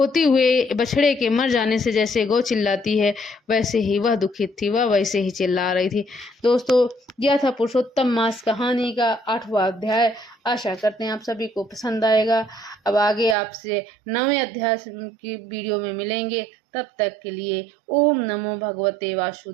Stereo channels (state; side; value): drops out; left; at 13.4 s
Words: हुए बछड़े के मर जाने से जैसे गौ चिल्लाती है, वैसे ही वह दुखित थी, वह वैसे ही चिल्ला रही थी। दोस्तों, यह था पुरुषोत्तम मास कहानी का 8वां अध्याय। आशा करते हैं आप सभी को पसंद आएगा। अब आगे आपसे 9वें अध्याय की वीडियो में मिलेंगे। तब तक के लिए ओम नमो भगवते